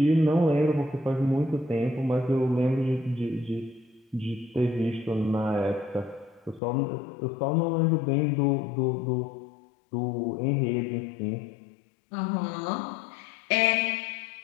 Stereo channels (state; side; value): drops out; right; at 6.6 s